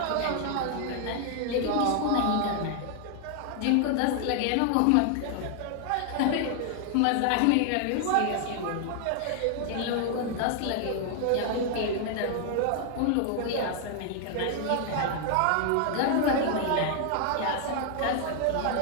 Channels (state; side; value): different; both; correlation 0.00